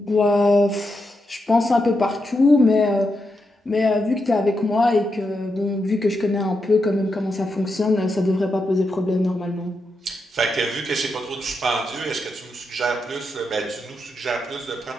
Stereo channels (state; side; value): normal; both; correlation 0.85